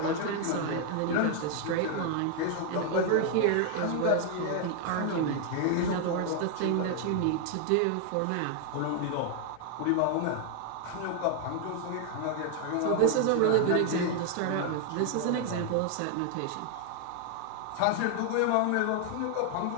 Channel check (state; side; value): different; both; correlation 0.00